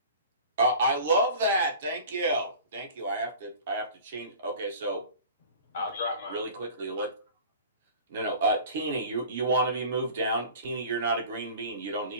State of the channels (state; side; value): inverted; both; correlation -0.41